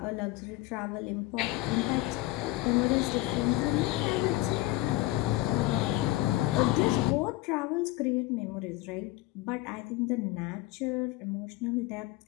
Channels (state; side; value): quieter; right; 17.9 dB